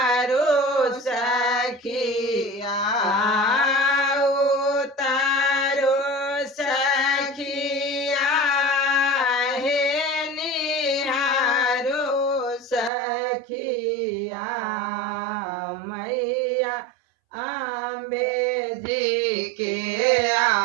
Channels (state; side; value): drops out; left; at 12.9 s